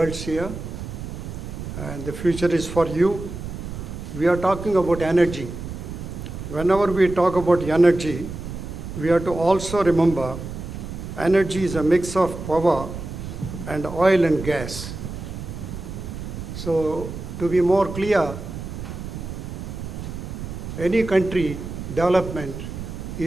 here, and the future is for you. We are talking about energy. Whenever we talk about energy, we have to also remember energy is a mix of power and oil and gas. So to be more clear, any country development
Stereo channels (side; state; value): right; noise; rumble, 8 dB below the sound